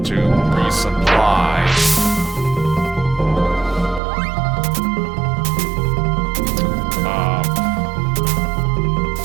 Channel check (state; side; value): drops out; left; at 4.0 s